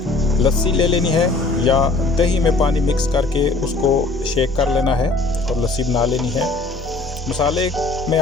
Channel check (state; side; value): quieter; right; 3.4 dB